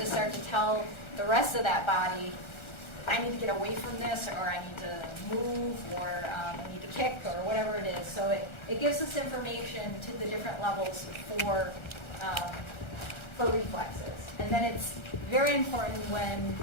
start to tell the rest of that body, I need to get away from this, or I need to move, or I need to kick, or whatever it is. So it gives us information to the different levels for reflexes. And then it's very important when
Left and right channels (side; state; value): right; late; 1.3 ms